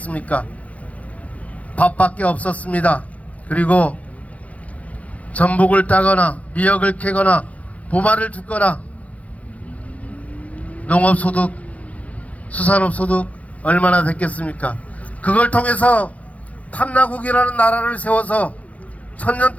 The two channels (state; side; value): late; right; 0.068 ms